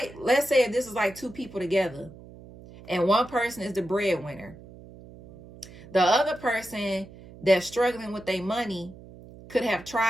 let's say if this is like two people together and one person is the breadwinner, the other person that's struggling with their money could have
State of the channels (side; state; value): right; noise; hum, 19 dB below the sound